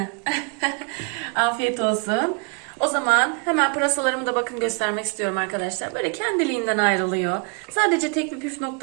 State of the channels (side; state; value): left; quieter; 34.6 dB